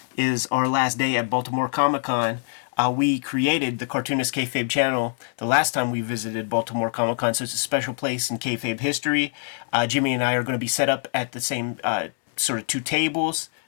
is our last day at Baltimore Comic-Con. We created the Cartoonist Kayfabe channel the last time we visited Baltimore Comic-Con, so it's a special place in Kayfabe history. Jimmy and I are going to be set up at the same sort of two tables.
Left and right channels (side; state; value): right; silent; 62 dB below the other